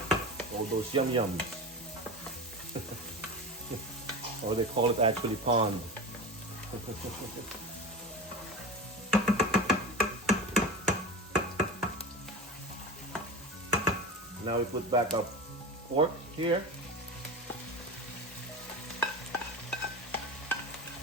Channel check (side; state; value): both; normal; correlation 0.27